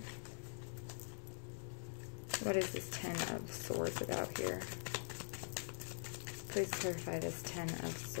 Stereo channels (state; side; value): silent; right; digital silence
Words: What is this Ten of Swords about here? Please clarify this Ten of